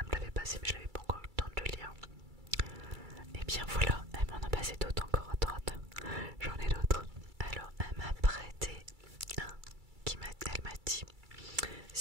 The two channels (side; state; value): left; late; 2.3 ms